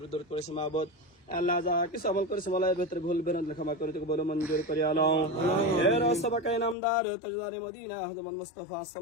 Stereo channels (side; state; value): right; drops out; at 6.8 s